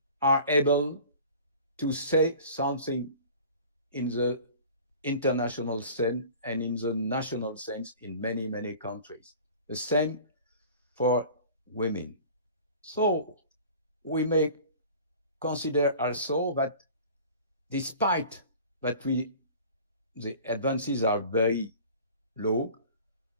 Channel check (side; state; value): both; inverted; correlation -0.44